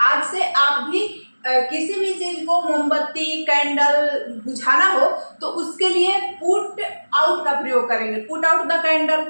आज से आप भी किसी भी चीज को, मोमबत्ती, कैंडल बुझाना हो तो उसके लिए पुट आउट का प्रयोग करेंगे। Put out the candle,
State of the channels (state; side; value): inverted; both; correlation -1.00